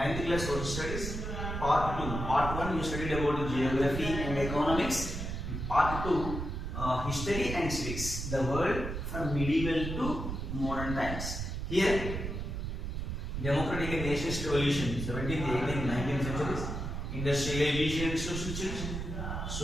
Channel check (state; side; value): noise; right; rumble, 4 dB below the sound